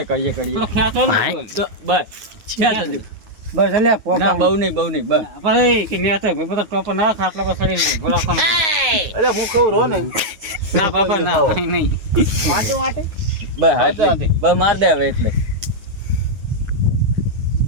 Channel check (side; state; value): left; late; 9.4 ms